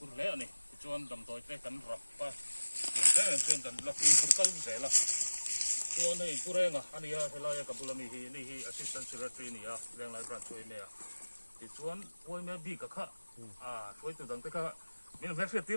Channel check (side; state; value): both; inverted; correlation -1.00